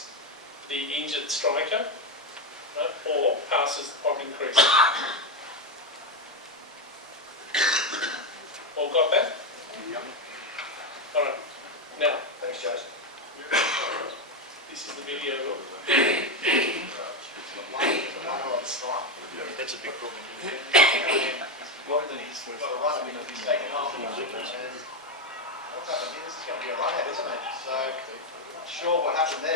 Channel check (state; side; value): normal; both; correlation 0.10